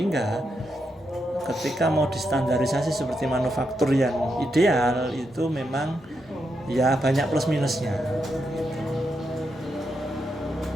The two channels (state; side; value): normal; both; correlation 0.83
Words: ketika mau distandarisasi seperti manufaktur yang ideal itu memang ya banyak plus minusnya.